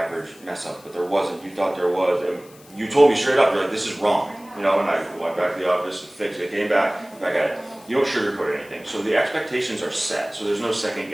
mess up, but there wasn't. You thought there was. And you told me straight up, you're like, this is wrong. You know, and I went back to the office, fixed it, came back at it. You don't sugarcoat anything. So the expectations are set. So there's no second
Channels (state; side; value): noise; left; hiss, 25 dB below the sound